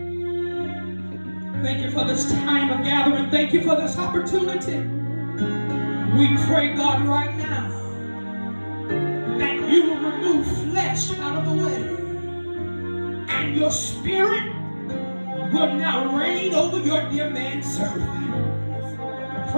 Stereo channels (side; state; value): both; inverted; correlation -1.00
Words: Thank you for this time of gathering. Thank you for this opportunity. We pray, God, right now that you will remove flesh out of the way. And your spirit will now reign over your dear man servant. I